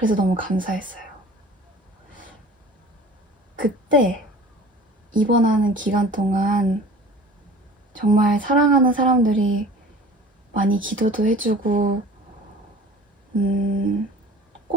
너무 감사했어요. 그때 입원하는 기간 동안 정말 사랑하는 사람들이 많이 기도도 해주고,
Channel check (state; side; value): normal; both; correlation 0.43